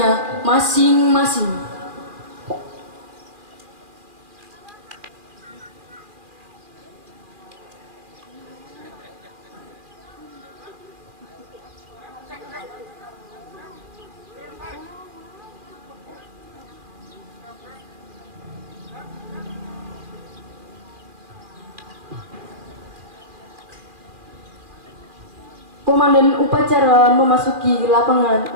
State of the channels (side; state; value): left; late; 2.4 ms